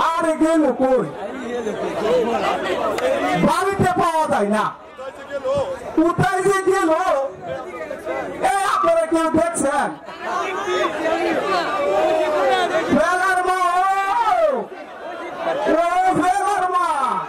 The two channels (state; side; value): identical; both; correlation 1.00